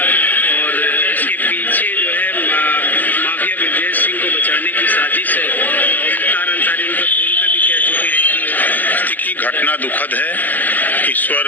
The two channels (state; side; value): late; right; 0.084 ms